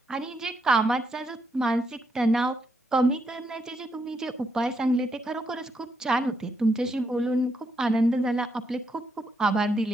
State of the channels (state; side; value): normal; both; correlation 0.79